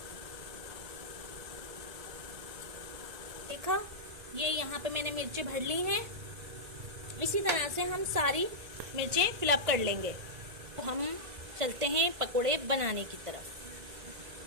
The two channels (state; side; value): late; left; 2.0 ms